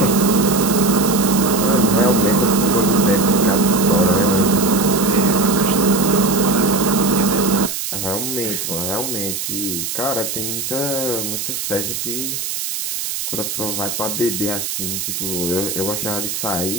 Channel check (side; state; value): right; noise; hiss, 4 dB below the sound